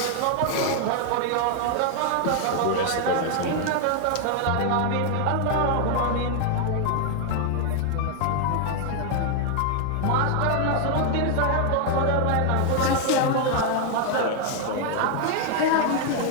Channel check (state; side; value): different; both; correlation 0.00